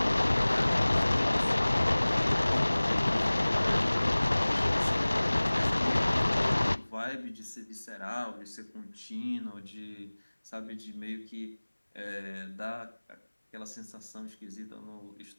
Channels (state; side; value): inverted; both; correlation -1.00